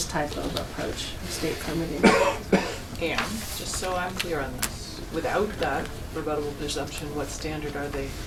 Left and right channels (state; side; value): identical; both; correlation 1.00